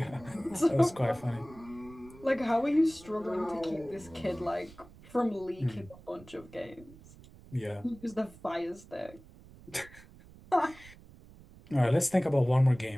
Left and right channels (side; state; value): right; noise; rumble, 21 dB below the sound